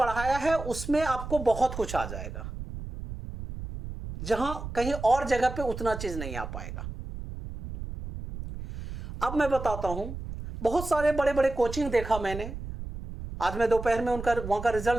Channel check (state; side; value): noise; right; rumble, 9 dB below the sound